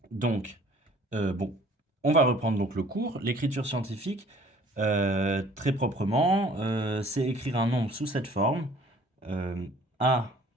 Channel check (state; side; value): normal; both; correlation 0.54